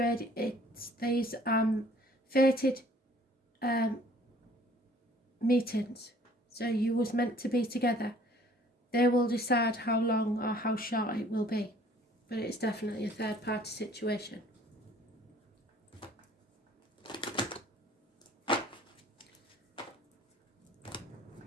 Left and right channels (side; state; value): both; normal; correlation 0.55